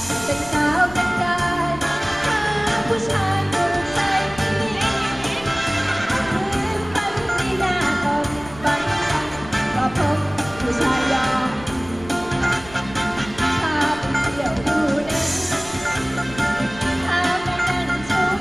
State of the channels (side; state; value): left; noise; rumble, 17 dB below the sound